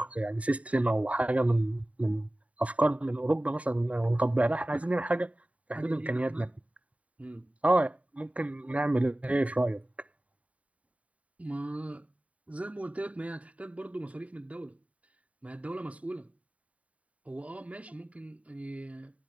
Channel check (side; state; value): left; late; 0.067 ms